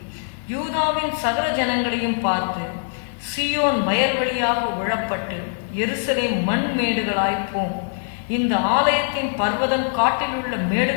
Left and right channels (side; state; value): right; silent; digital silence